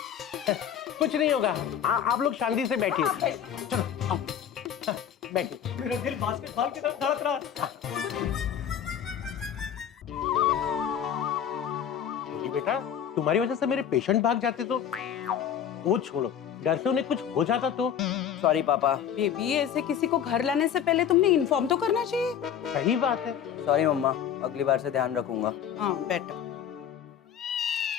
कुछ नहीं होगा, आप लोग शांति से बैठिए। चलो आओ, बैठिए। मेरा दिल बास्केटबॉल की तरफ धड़क रहा है। बोली बेटा, तुम्हारी वजह से मेरे पेशेंट भाग जाते तो। वो छोड़ो, डर से उन्हें कुछ हो जाता तो। सॉरी पापा। बेबी ऐसे किसी को घर लाने से पहले तुमने इन्फॉर्म तो करना चाहिए। सही बात है। सॉरी मम्मा, अगली बार से ध्यान रखूंगा। हाँ बेटर।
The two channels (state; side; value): quieter; right; 8.9 dB